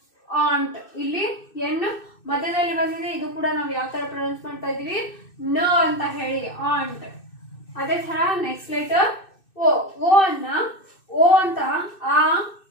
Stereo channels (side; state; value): right; late; 2.6 ms